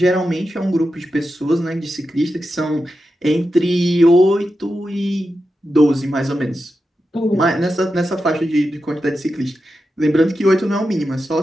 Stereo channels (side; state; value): both; normal; correlation 0.90